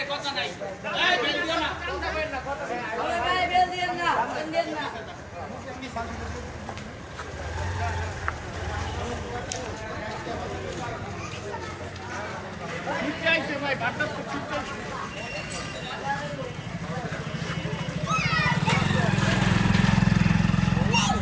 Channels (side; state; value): both; identical; correlation 1.00